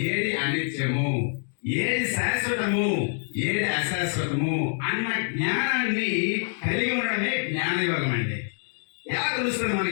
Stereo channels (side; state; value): right; silent; 61 dB below the other